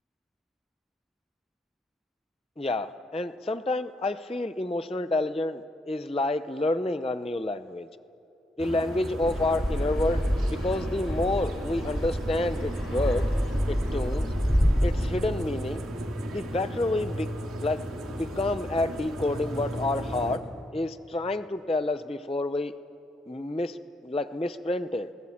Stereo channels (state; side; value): normal; both; correlation 0.80